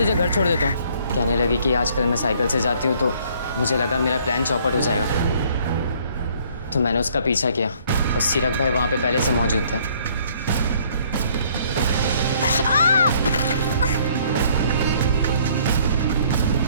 घर छोड़ देता हूँ। कहने लगी कि आजकल मैं साइकिल से जाती हूँ तो मुझे लगा मेरा प्लान चौपट हो जाएगा, तो मैंने उसका पीछा किया और सीरक भाई वहाँ पे पहले से मौजूद थे।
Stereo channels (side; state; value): both; inverted; correlation -0.60